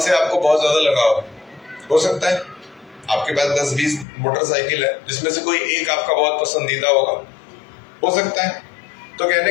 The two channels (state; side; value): drops out; right; at 4.0 s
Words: से आपको बहुत ज्यादा लगाव हो सकता है। आपके पास 10-20 मोटरसाइकिल है जिसमें से कोई एक आपका बहुत पसंदीदा होगा, हो सकता है। तो